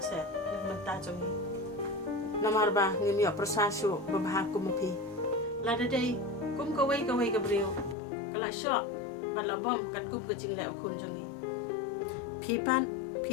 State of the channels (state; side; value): drops out; right; at 8.0 s